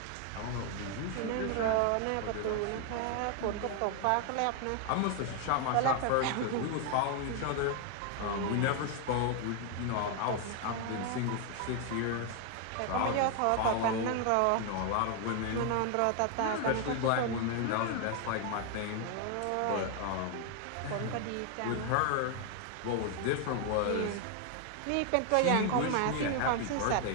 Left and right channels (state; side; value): different; both; correlation 0.01